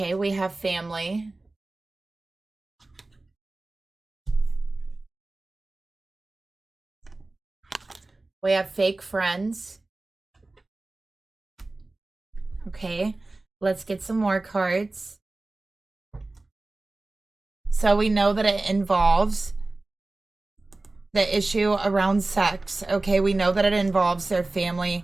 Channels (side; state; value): left; quieter; 3.1 dB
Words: we have family. We have fake friends. Okay, let's get some more cards. So we know that it involves the issue around sex. Okay, we know that it involves their family,